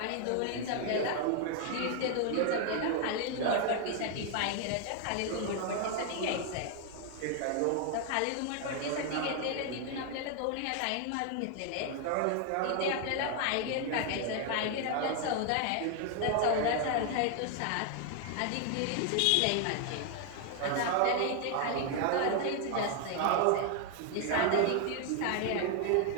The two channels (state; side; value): different; both; correlation 0.00